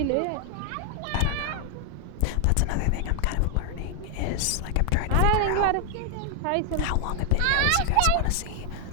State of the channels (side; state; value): both; different; correlation 0.00